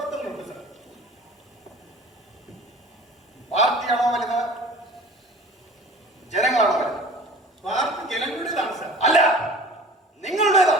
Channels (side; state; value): both; normal; correlation 0.42